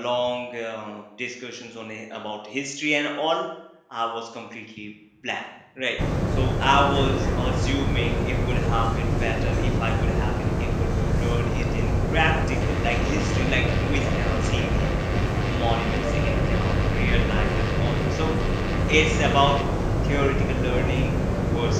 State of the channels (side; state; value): both; identical; correlation 1.00